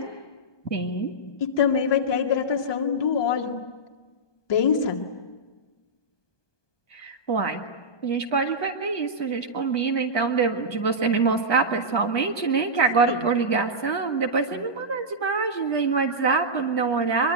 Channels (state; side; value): late; right; 1.2 ms